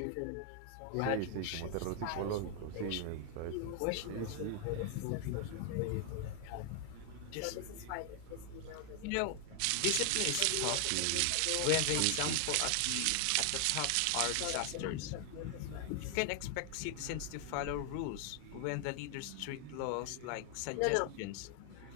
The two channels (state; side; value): different; both; correlation 0.00